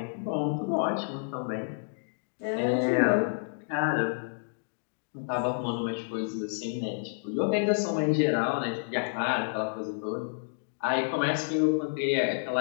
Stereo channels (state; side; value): silent; right; digital silence